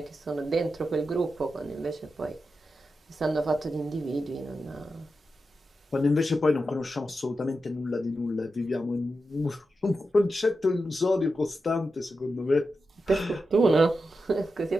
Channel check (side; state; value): both; normal; correlation 0.90